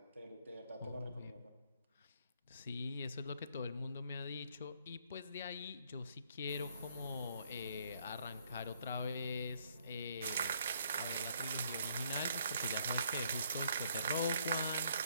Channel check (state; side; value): inverted; both; correlation -0.67